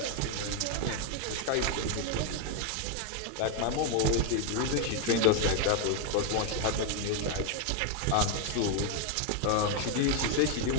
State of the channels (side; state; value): both; different; correlation 0.01